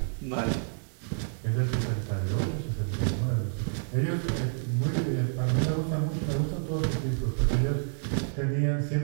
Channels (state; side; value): silent; left; digital silence